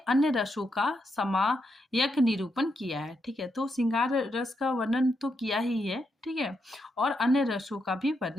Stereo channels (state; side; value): normal; both; correlation 0.82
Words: रसों का समायक निरूपण किया है। ठीक है, तो श्रृंगार रस का वर्णन तो किया ही है। ठीक है, और अन्य रसों का भी